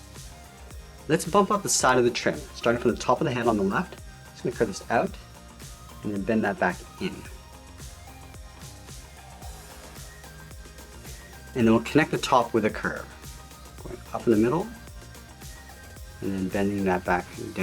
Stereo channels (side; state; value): both; identical; correlation 1.00